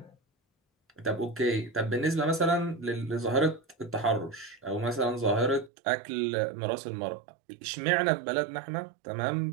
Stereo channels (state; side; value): drops out; left; at 5.7 s